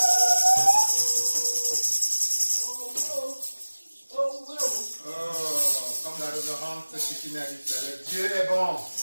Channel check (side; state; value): both; inverted; correlation -1.00